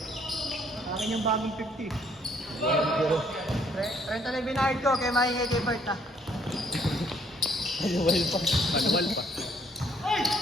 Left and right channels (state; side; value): normal; both; correlation 0.66